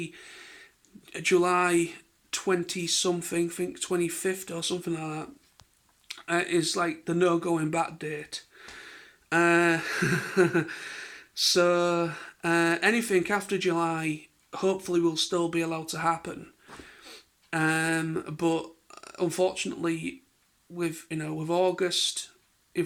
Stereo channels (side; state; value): both; identical; correlation 1.00